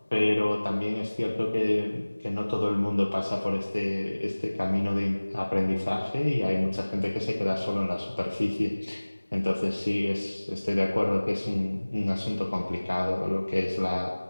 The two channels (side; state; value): both; inverted; correlation -1.00